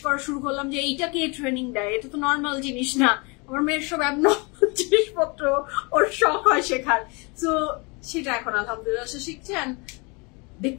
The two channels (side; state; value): right; quieter; 29.7 dB